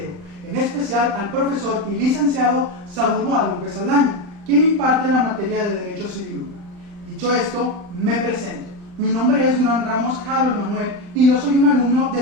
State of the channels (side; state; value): left; late; 39 ms